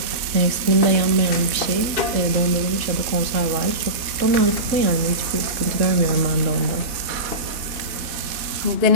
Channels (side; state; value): left; late; 4.0 ms